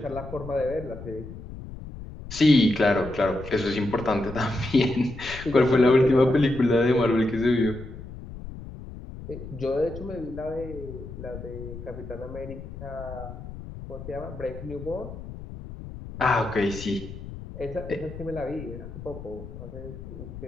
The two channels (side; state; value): left; noise; rumble, 12 dB below the sound